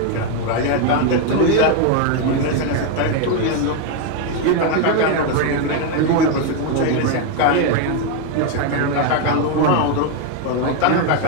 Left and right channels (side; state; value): both; different; correlation 0.01